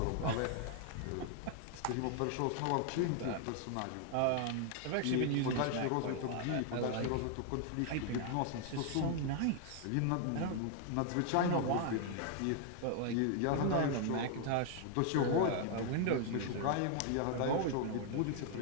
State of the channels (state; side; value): different; both; correlation 0.00